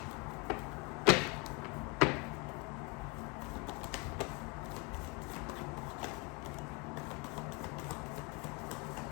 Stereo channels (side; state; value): right; quieter; 28.7 dB